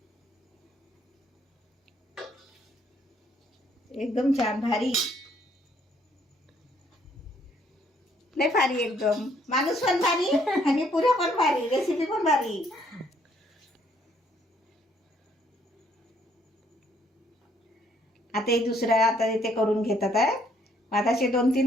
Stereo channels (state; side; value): normal; both; correlation 0.67